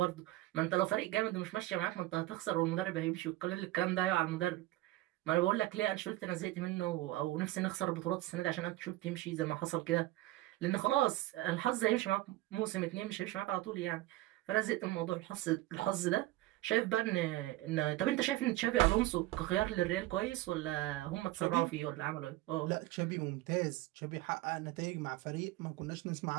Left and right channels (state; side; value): quieter; left; 17.0 dB